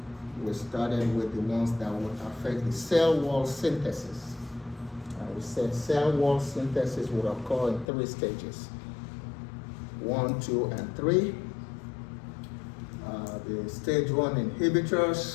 we started with the ones that would affect the cell wall synthesis. We said cell wall synthesis would occur in 3 stages, 1, 2, and 3. The stage 1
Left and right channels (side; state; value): right; drops out; at 7.9 s